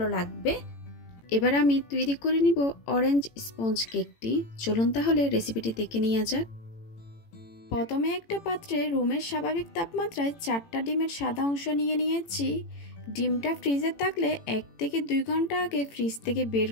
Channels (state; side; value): late; right; 18 ms